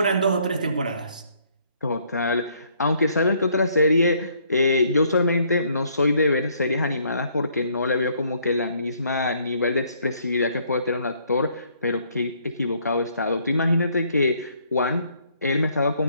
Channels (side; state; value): both; inverted; correlation -0.66